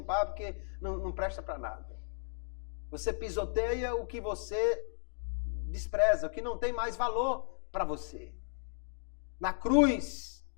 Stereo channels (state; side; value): silent; right; digital silence